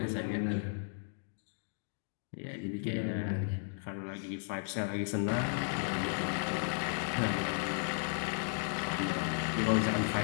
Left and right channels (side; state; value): right; silent; digital silence